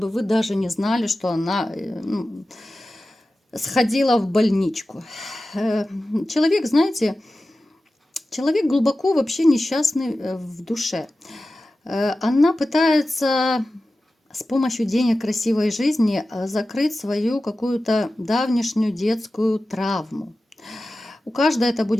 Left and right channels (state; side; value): normal; both; correlation 0.94